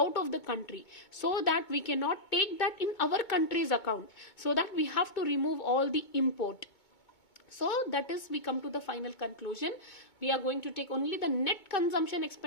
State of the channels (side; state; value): right; late; 2.2 ms